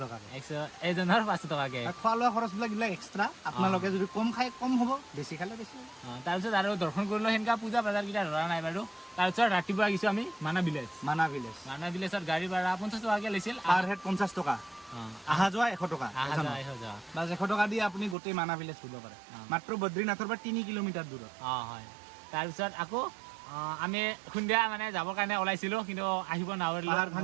টকাকৈ এজনৰ 500 টকাকৈ খোৱা লোৱা খৰচবিলাক এইবিলাক এক্সট্ৰা আপোনালোকে যদি কম খাই কম হ'ব বেছি খালে বেছি তাৰপিছত আৰু দৰ্শন কৰিলোঁ সেনেকুৱা পূজা বজাৰকেইটা ধৰা নাই বাৰু তাৰপিছত ৰাতিপুৱা গৈছোঁ আমি মানা ভিলেজত গাড়ী ভাড়া 50 টকাকৈ লৈছিল পাৰ হেড 50 টকা আহা যোৱা 100 টকা বাছ 100 টকা দি আপুনি গোটেই মানা ভিলেজ ফুৰিব পাৰে মাত্ৰ বদ্ৰীনাথৰ পৰা 3 কিলোমিটাৰ দূৰত হয় তাৰপিছত আকৌ আমি সন্ধিয়া মানে যাবৰ কাৰণে ওলাইছিলোঁ কিন্তু আহিব নোৱাৰিলোঁ পাহাৰ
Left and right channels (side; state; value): left; drops out; at 18.2 s